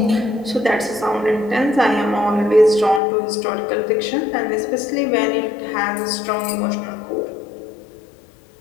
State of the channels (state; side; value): drops out; right; at 3.0 s